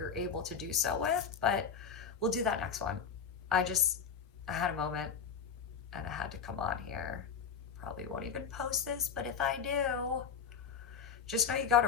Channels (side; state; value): right; quieter; 6.7 dB